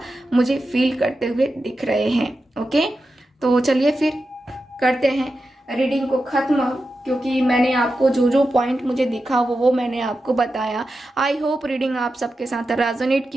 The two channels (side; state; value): both; normal; correlation 0.90